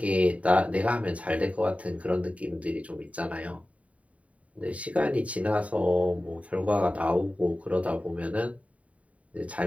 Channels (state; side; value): late; left; 0.067 ms